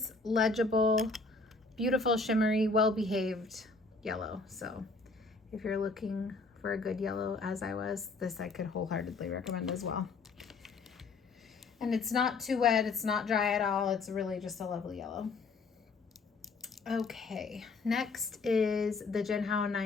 legible, beautiful, shimmery, well-behaved yellow. So if you're looking for a good yellow, as I was, this I could wholeheartedly recommend as well. And it's not too wet, it's not dry at all, it's really just a lovely yellow. Okay, next is the Genhow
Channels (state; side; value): quieter; right; 3.9 dB